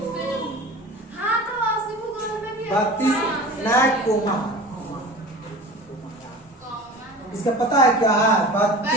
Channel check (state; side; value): normal; both; correlation 0.37